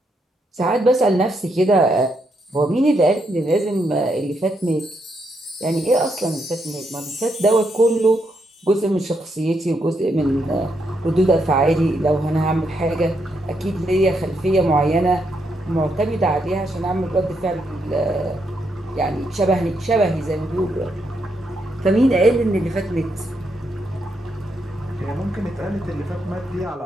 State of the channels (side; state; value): both; normal; correlation 0.79